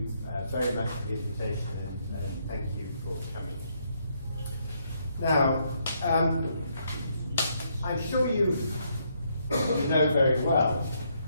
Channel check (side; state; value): both; inverted; correlation -0.74